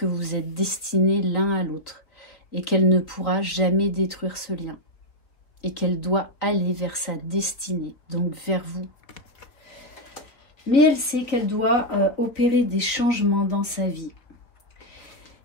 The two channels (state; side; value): late; right; 3.9 ms